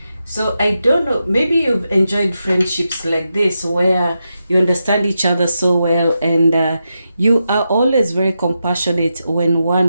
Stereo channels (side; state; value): both; inverted; correlation -0.87